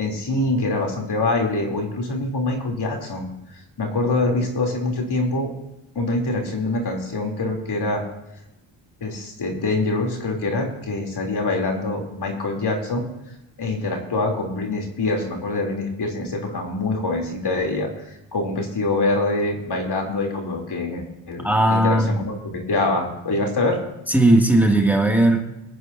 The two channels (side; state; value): both; normal; correlation 0.30